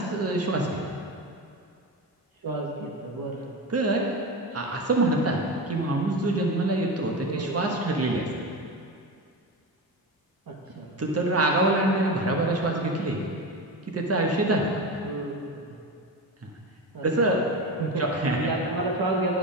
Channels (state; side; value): normal; both; correlation 0.23